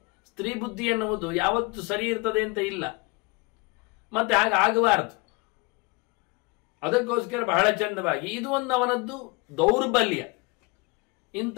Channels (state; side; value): quieter; right; 27.2 dB